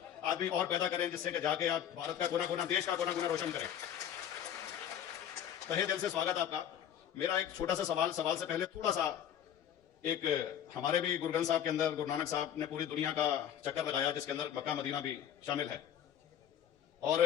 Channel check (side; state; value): right; quieter; 9.9 dB